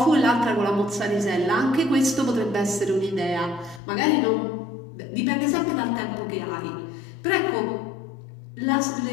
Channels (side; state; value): right; drops out; at 3.8 s